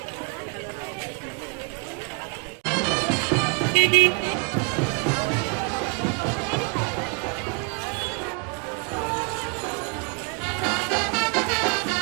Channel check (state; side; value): quieter; left; 35.0 dB